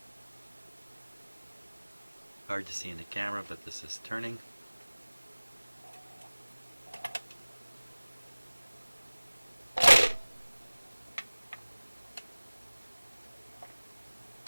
Hard to see in the camera, but this is turning.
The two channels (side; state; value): both; inverted; correlation -1.00